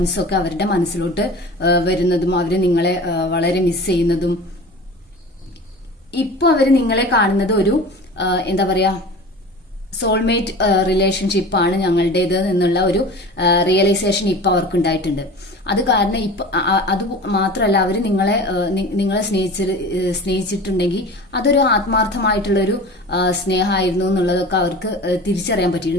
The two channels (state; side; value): normal; both; correlation 0.37